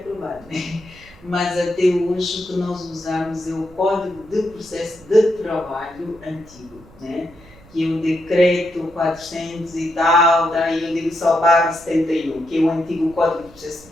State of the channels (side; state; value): right; noise; rumble, 23 dB below the sound